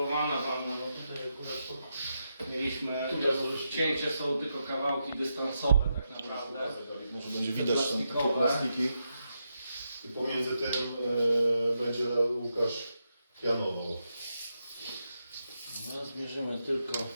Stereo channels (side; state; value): both; inverted; correlation -0.84